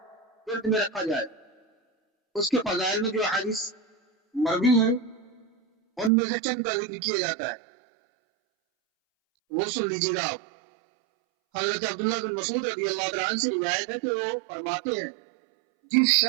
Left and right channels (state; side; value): drops out; left; at 6.1 s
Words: ذہن میں رکھا جائے۔ اس کے فضائل میں جو حدیث مروی ہیں ان میں سے چند کا ذکر کیا جاتا ہے، وہ سن لیجیے گا آپ۔ حضرت عبداللہ بن مسعود رضی اللہ تعالیٰ عنہ سے روایت ہے کہ وہ فرماتے ہیں، جس